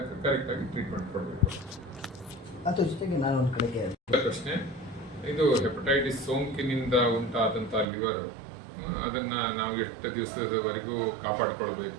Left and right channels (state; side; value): drops out; left; at 7.9 s